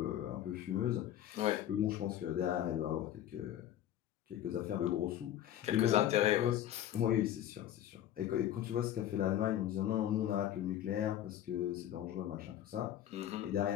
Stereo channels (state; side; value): quieter; right; 11.6 dB